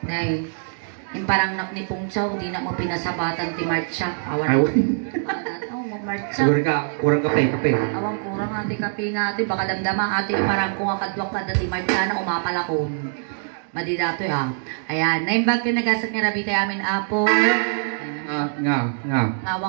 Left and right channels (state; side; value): silent; left; digital silence